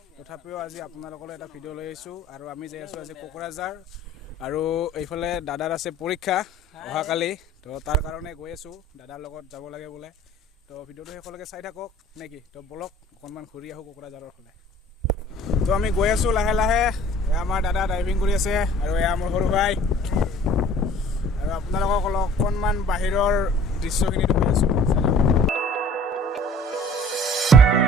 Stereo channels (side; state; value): both; normal; correlation 0.50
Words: তথাপিও আজি আপোনালোকলৈ এটা ভিডিঅ' লৈ আহিছোঁ। আৰু আমি যাই আছোঁ আজি কোকৰাঝাৰ, আৰু এইফালে দাদাৰ আছে পৰীক্ষা অহাকালি, তো তাৰ কাৰণে গৈ আছোঁ, দাদাৰ লগত যাব লাগে বোলে। তো ভিডিঅ'টো শেষলৈকে চাই থাকক নেকি, তো বলক অকণমান ঘূৰি আহোঁ কোকৰাঝাৰৰ ফালে। তো আমি গৈ আছোঁ লাহে লাহে। এয়া আমাৰ দাদা ড্ৰাইভিং কৰি আছে আৰু এয়া মোৰ সৰু ভাই, আৰু আপোনালোকক অকণমান বাহিৰৰ দৃশ্যখিনি দেখুৱাই আছোঁ।